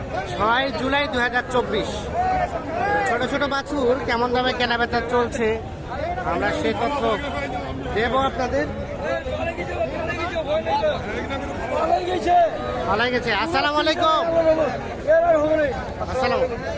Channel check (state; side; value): identical; both; correlation 1.00